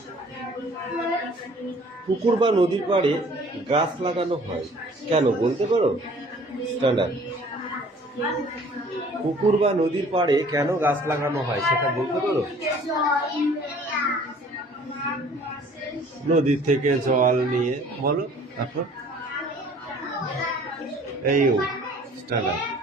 পুকুর বা নদীর পাড়ে গাছ লাগানো হয় কেন বলতে পারো? স্ট্যান্ডার্ড। পুকুর বা নদীর পাড়ে কেন গাছ লাগানো হয় সেটা বলতে পারো? নদীর থেকে জল নিয়ে বলো। তারপর এই স্ট্যান্ডার্ড।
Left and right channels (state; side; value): normal; both; correlation 0.52